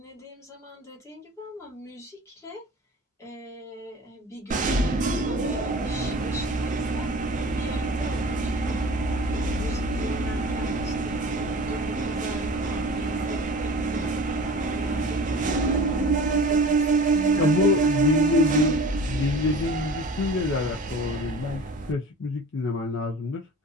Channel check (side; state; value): both; normal; correlation 0.40